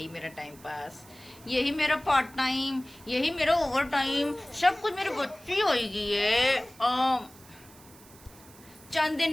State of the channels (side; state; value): right; noise; hiss, 23 dB below the sound